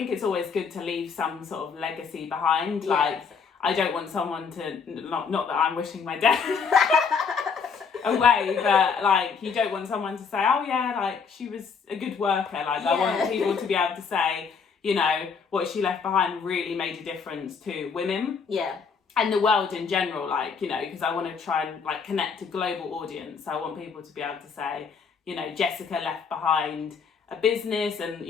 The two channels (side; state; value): right; quieter; 5.8 dB